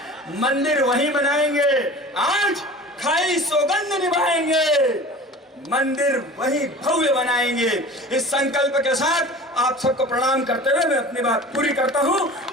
मंदिर वहीं बनाएंगे, आज खाई सौगंध निभाएंगे, मंदिर वहीं भव्य बनाएंगे। इस संकल्प के साथ आप सबको प्रणाम करते हुए मैं अपनी बात पूरी करता हूं।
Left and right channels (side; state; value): both; normal; correlation 0.39